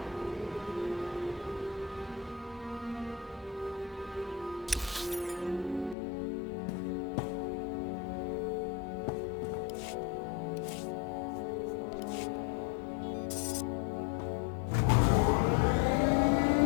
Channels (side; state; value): right; drops out; at 6.0 s